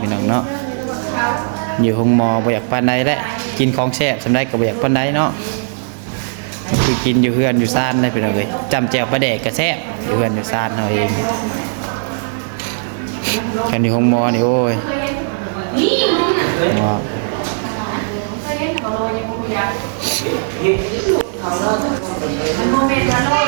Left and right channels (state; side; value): silent; left; digital silence